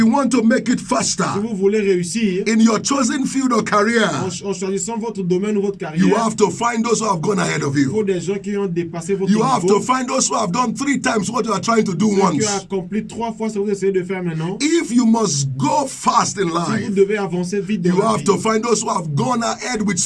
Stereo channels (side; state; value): both; identical; correlation 1.00